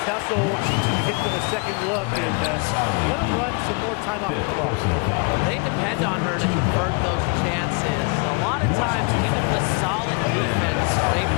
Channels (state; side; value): quieter; right; 32.9 dB